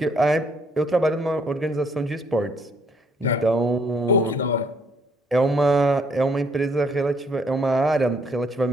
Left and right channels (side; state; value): both; normal; correlation 0.66